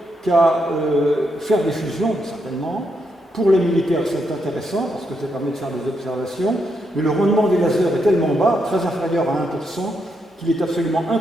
qu'à faire des fusions, certainement. Pour les militaires, c'est intéressant, parce que ça permet de faire des observations, mais le rendement des lasers est tellement bas, très inférieur à 1%, qu'il est absolument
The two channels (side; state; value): both; normal; correlation 0.80